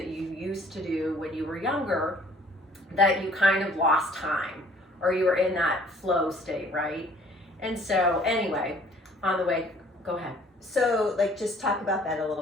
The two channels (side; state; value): both; normal; correlation 0.56